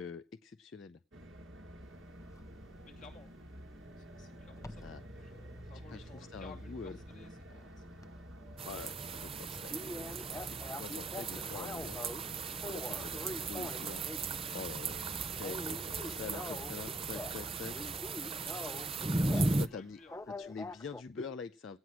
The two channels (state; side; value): normal; both; correlation 0.69